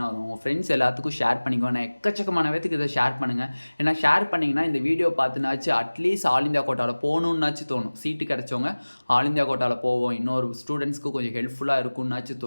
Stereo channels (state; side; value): inverted; both; correlation -1.00